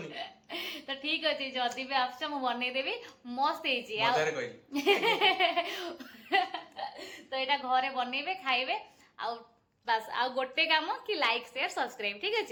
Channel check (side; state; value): both; identical; correlation 1.00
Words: ତ ଠିକ ଅଛି, ଯଦି ବି ଆସୁଛ ମୁଁ ବନେଇଦେବି। ମସ୍ତ ହେଇଛି। ତ ଏଇଟା ଘରେ ବନେଇବେ, ଖାଇବେ। ଆଉ ବାସ୍ ଆଉ ଗୋଟେ କାମ କି ଲାଇକ୍, ସେୟାର, ସବସ୍କ୍ରାଇବ। ଠିକ